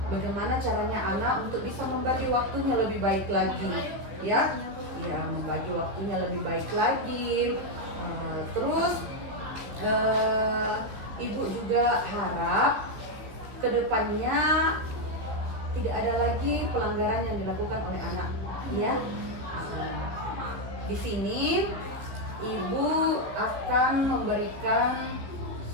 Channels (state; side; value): late; left; 15 ms